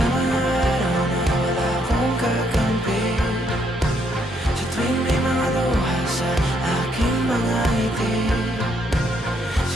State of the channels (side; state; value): both; normal; correlation 0.72